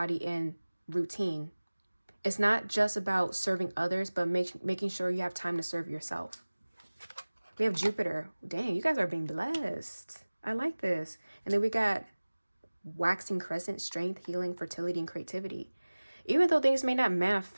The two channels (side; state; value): both; inverted; correlation -1.00